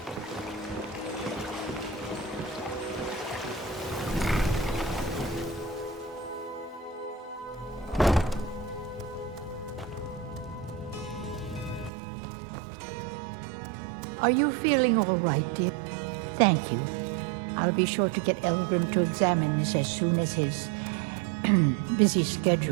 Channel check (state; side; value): drops out; left; at 11.9 s